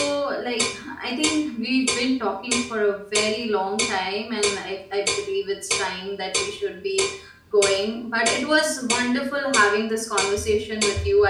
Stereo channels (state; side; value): identical; both; correlation 1.00